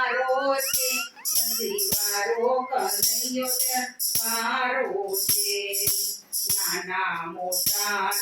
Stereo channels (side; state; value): both; identical; correlation 1.00